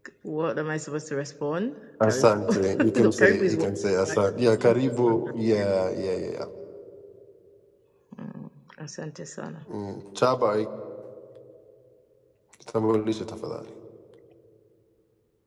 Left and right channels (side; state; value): both; identical; correlation 1.00